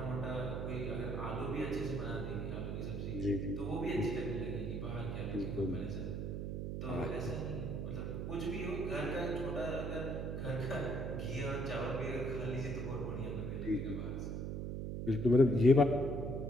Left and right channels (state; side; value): noise; right; hum, 3 dB below the sound